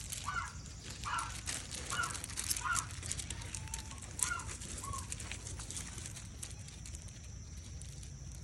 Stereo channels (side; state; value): both; identical; correlation 1.00